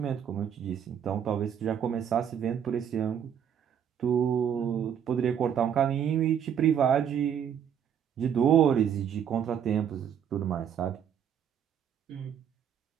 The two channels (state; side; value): quieter; left; 8.7 dB